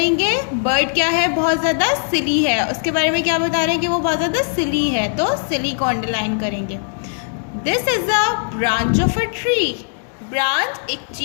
बर्ड क्या है, बहुत ज़्यादा सिली है, उसके बारे में क्या बता रहे हैं कि वो बहुत ज़्यादा सिली है, तो सिली को अंडरलाइन करेंगे। This is a branch of a tree, branch एक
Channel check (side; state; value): right; silent; digital silence